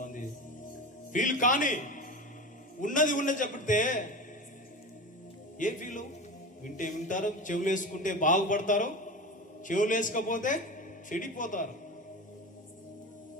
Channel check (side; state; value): both; normal; correlation 0.27